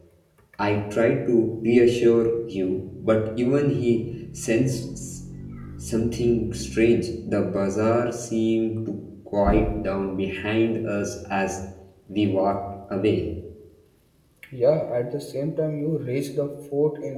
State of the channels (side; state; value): both; identical; correlation 1.00